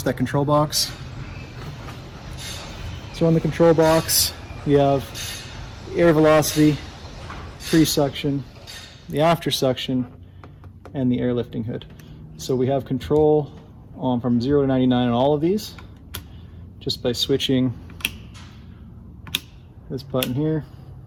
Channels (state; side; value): identical; both; correlation 1.00